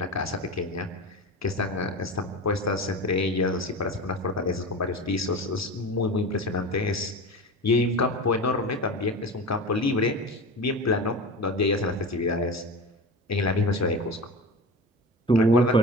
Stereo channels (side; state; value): both; normal; correlation 0.29